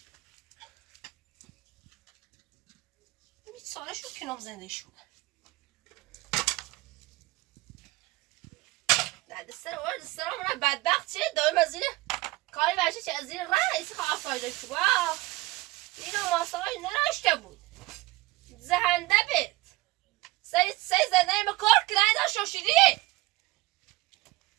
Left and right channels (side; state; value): left; quieter; 20.2 dB